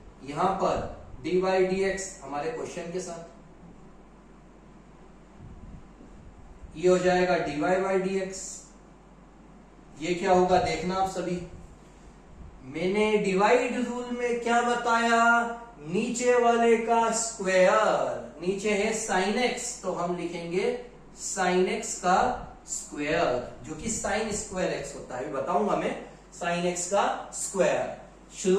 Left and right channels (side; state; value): both; identical; correlation 1.00